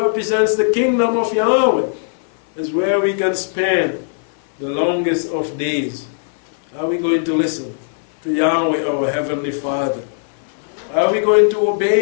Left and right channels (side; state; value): right; silent; 56 dB below the other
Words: the kingdom of Yahweh is where we can spend the longest of days. Are we going to listen to Yahweh, our Heavenly Father? Are we going to